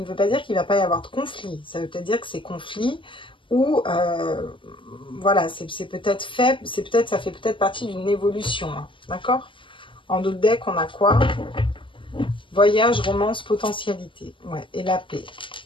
veut pas dire qu'il ne va pas y avoir de conflit, ça veut peut-être dire que ces conflits ou voilà, c'est peut-être fait, ça fait peut-être partie d'une évolution, hein, d'accord? En d'autres decks, on a quoi? Voyage, romance, potentialité, ouais, et la paix,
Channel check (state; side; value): late; right; 0.25 ms